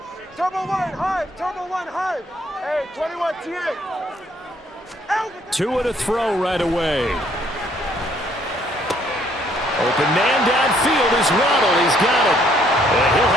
Turbo one, high. Turbo one, high. Hey, 21 T8. Two and a throw right away. Open man downfield is Waddle. He's got it. And he'll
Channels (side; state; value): both; normal; correlation 0.65